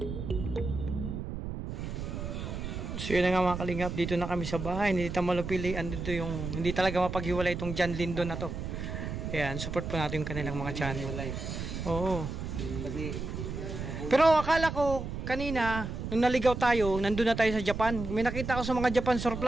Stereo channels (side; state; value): right; noise; rumble, 6 dB below the sound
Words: So yun na nga mga kalingap, dito na kami sa bahay ni Tita Malupili. Andito yung hindi talaga mapaghiwalay itong John Lindo na to. Ayan, support po natin yung kanilang mga channel. Oo. Pero akala ko kanina, nung naligaw tayo, nandun na tayo sa Japan. May nakita ko sa mga Japan